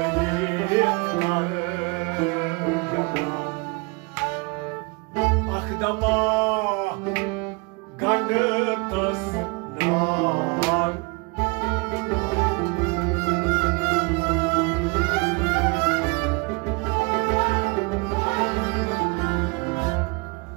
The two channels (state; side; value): quieter; left; 29.0 dB